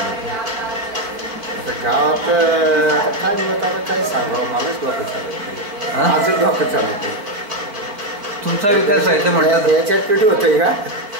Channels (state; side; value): late; left; 4.6 ms